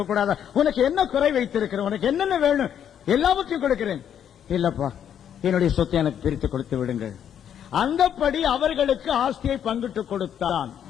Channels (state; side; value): quieter; right; 9.2 dB